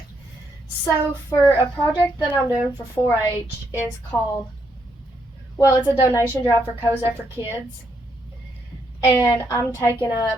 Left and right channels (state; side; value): normal; both; correlation 0.76